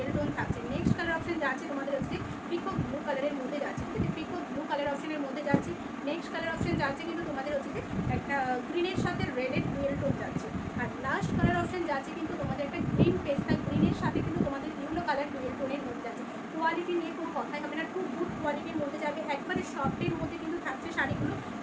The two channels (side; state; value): both; identical; correlation 1.00